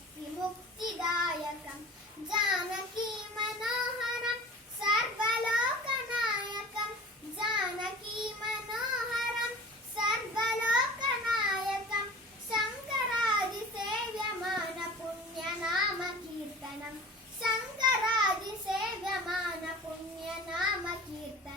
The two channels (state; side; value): normal; both; correlation 0.40